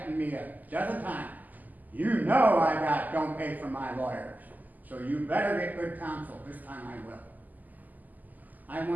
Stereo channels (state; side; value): late; left; 0.082 ms